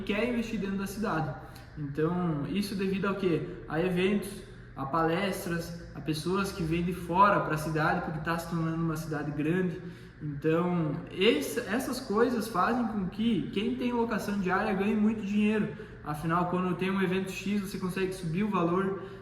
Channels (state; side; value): identical; both; correlation 1.00